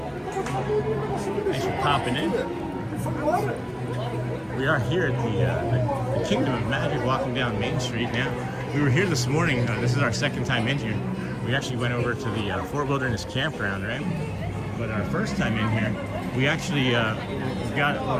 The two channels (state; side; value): identical; both; correlation 1.00